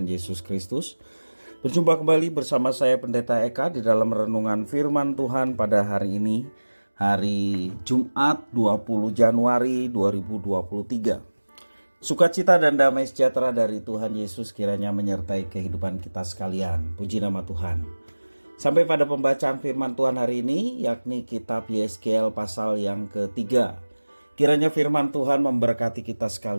Yesus Kristus. Berjumpa kembali bersama saya Pendeta Eka di dalam renungan firman Tuhan pada hari ini, hari Jumat 20 Januari 2023. Sukacita dan damai sejahtera dari Tuhan Yesus kiranya menyertai kehidupan kita sekalian. Puji nama Tuhan. Sampai pada pembacaan firman Tuhan hari ini, yakni kitab Yeskel pasal yang ketiga. Kiranya firman Tuhan memberkati kita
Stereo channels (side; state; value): both; inverted; correlation -1.00